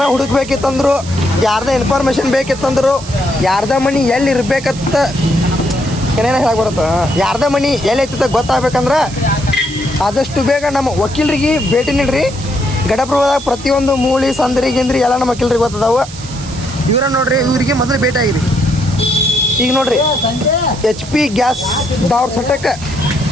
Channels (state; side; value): noise; right; hiss, 15 dB below the sound